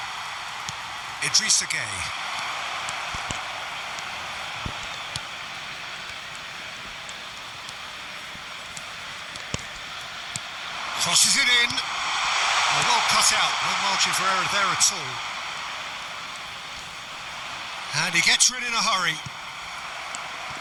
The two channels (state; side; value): identical; both; correlation 1.00